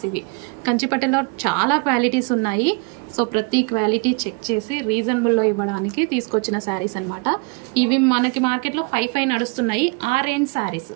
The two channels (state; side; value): quieter; left; 31.5 dB